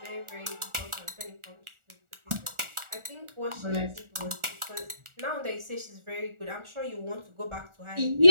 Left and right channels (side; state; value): left; late; 1.4 ms